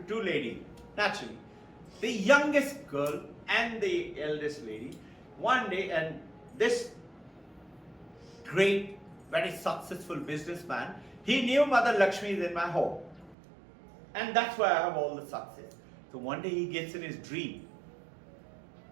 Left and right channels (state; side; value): drops out; left; at 13.4 s